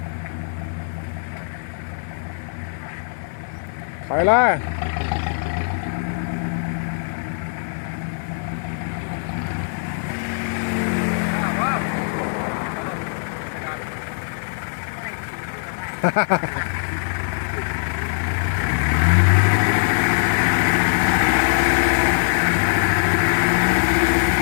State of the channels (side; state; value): right; silent; digital silence